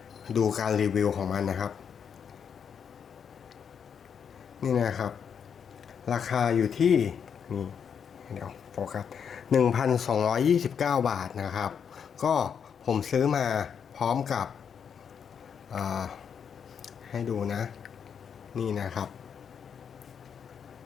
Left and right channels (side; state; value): right; quieter; 7.3 dB